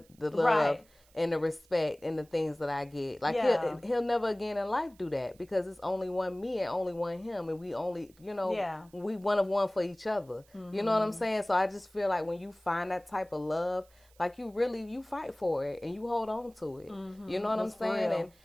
love right. and the respect and the things that I get. Like he'll never again in life do that, because it's only one me and only one him, and we only, we one of one for each other. Mm-hmm. You know what I'm saying? So I just feel like when you find that type of love, like you fight for it and you hold on to it. Mm-hmm. You know what I'm saying?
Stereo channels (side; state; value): right; noise; hiss, 30 dB below the sound